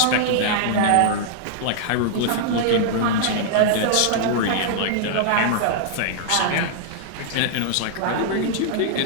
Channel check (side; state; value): both; different; correlation -0.01